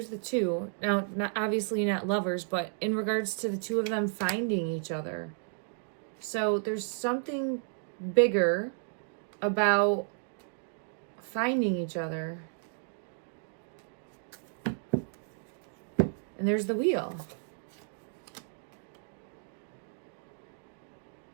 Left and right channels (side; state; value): left; silent; digital silence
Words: the two. Now, obviously not lovers, but in regards to the two of them finding each other. So there's something bigger about finding each other. And there's the wheel.